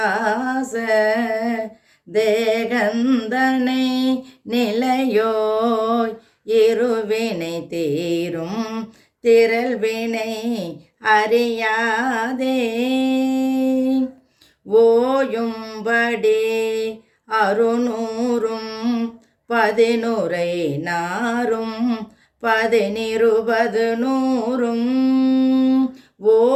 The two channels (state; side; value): identical; both; correlation 1.00